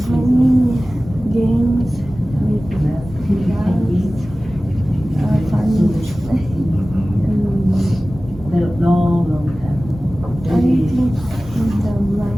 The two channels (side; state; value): both; normal; correlation 0.97